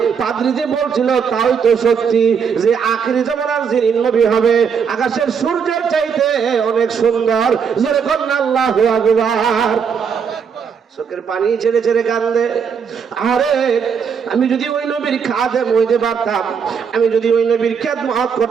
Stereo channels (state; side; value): quieter; left; 6.6 dB